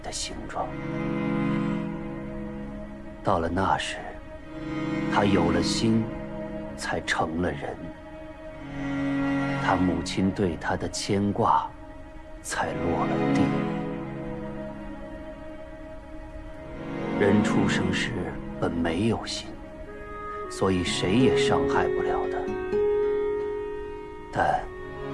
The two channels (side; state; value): both; identical; correlation 1.00